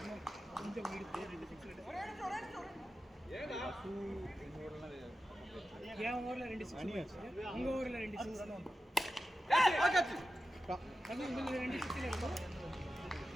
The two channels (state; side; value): normal; both; correlation 0.92